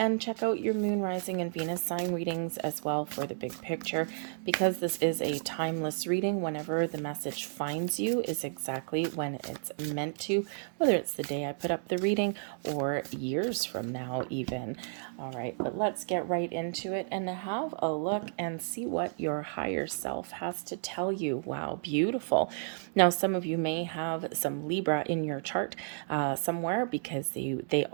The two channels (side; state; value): left; silent; digital silence